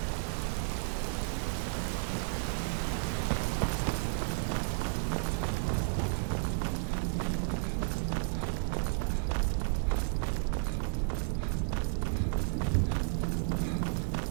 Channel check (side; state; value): left; silent; digital silence